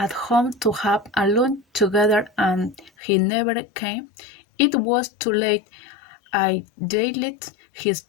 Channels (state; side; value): drops out; right; at 2.9 s